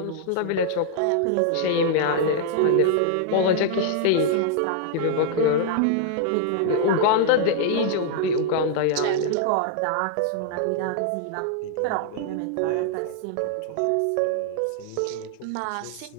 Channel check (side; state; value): both; different; correlation -0.01